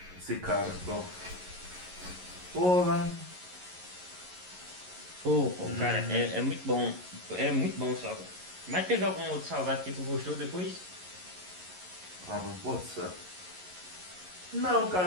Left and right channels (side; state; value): left; late; 11 ms